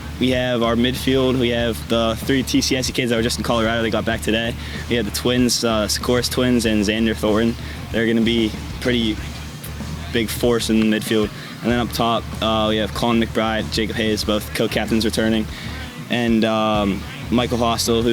We have our midfield. We have the 3 TCSE kids that were just in Colorado. They got back today. We have the twins, Sikoris twins and Xander Thornton. They're going to be pretty big force in the midfield. And then up top, we have Colin McBride, Jacob Hayes, both co-captains returning, and Michael Hostel,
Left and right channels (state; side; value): identical; both; correlation 1.00